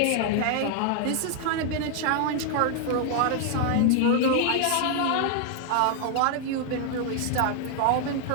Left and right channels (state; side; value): different; both; correlation 0.00